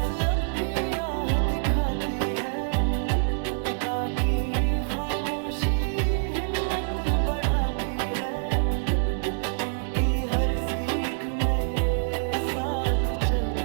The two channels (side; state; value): left; silent; digital silence